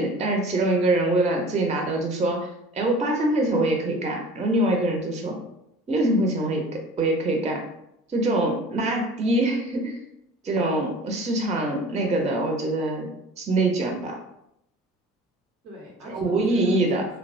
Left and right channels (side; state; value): both; normal; correlation 0.44